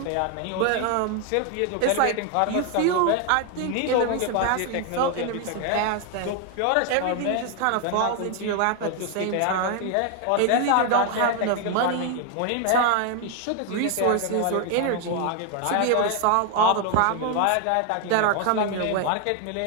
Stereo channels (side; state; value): both; different; correlation 0.00